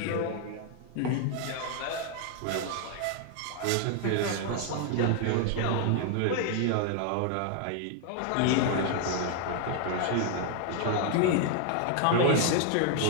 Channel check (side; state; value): both; different; correlation 0.00